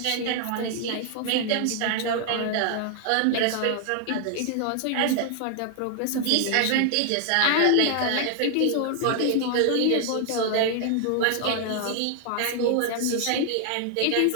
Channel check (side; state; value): both; different; correlation 0.00